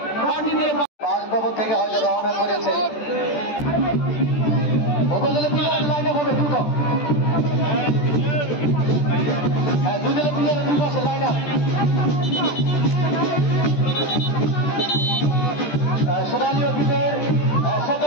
পানি দিয়ে বাসভবন থেকে হয়তো রওনা করেছে। উপজেলা প্লেয়ারের লাইনে হবে দ্রুত, হ্যাঁ দুজেলা প্লেয়ারের দুই পাশে লাইন আপ। সোনালী অফিসের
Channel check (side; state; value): right; late; 14 ms